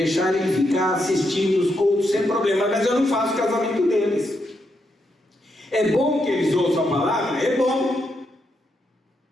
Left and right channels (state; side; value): normal; both; correlation 0.81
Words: eles ficar assistindo os cultos sem problema, mas eu não faço o casamento deles. É bom que eles ouçam a palavra? É bom.